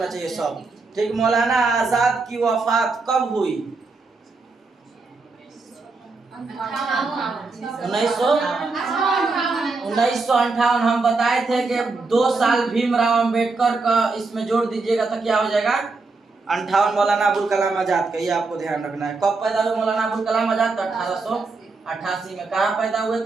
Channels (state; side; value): quieter; left; 3.9 dB